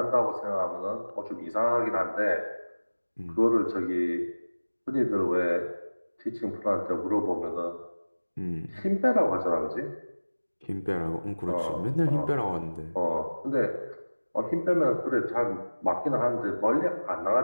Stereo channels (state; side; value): inverted; both; correlation -1.00